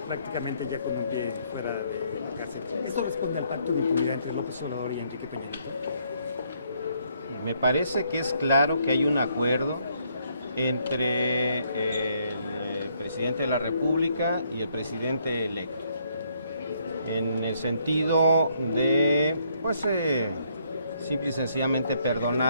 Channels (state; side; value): inverted; both; correlation -0.70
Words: prácticamente ya con un pie fuera de la cárcel. ¿Esto responde al pacto de impunidad entre López Obrador y Enrique Peña Nieto? Me parece que es claro que hay un acuerdo entre el presidente de la República y el presidente electo, en el sentido de, pues, simple y sencillamente